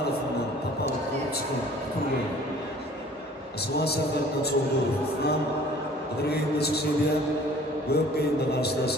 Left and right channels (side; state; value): both; normal; correlation 0.51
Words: topolib ko'rib chiqib turgan Aslan Safardan So'g'durov Adirgayimda chiqishga Gökgayimda